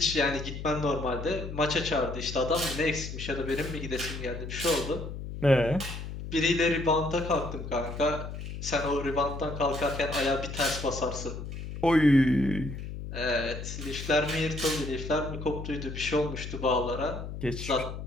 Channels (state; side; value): noise; left; hum, 8 dB below the sound